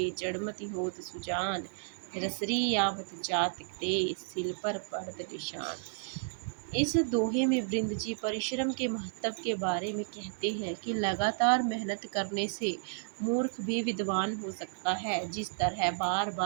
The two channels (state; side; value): silent; left; digital silence